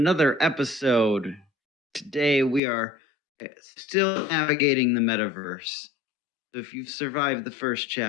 episode. Today we are still navigating the metaverse. So if you've survived the first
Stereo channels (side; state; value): right; drops out; at 2.6 s